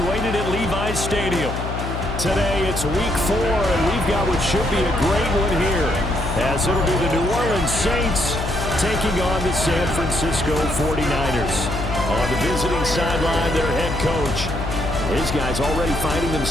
at Levi's Stadium. Today it's week 4, and we've got what should be a great one here, as it'll be the New Orleans Saints taking on the San Francisco 49ers. On the visiting sideline, their head coach. His guys already finding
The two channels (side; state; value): left; noise; hum, 5 dB below the sound